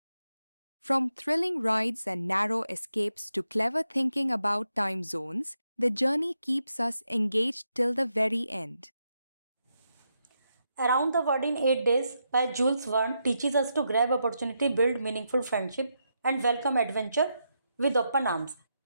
From thrilling rides and narrow escapes to clever thinking about time zones, the journey keeps us engaged till the very end. Around the World in 8 Days by Jules Verne teaches us to grab opportunity, build meaningful friendship, and welcome adventure with open arms.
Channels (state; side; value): inverted; both; correlation -0.83